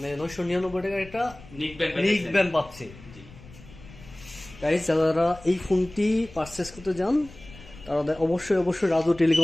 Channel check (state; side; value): noise; left; rumble, 20 dB below the sound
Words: 999 টাকা একটা নিক ব্যান্ড পাচ্ছে। গাইস, যারা এই ফোনটি পারচেজ করতে যান তারা অবশ্যই রাজু